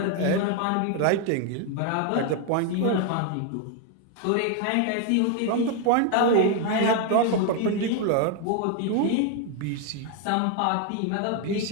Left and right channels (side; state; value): both; different; correlation 0.01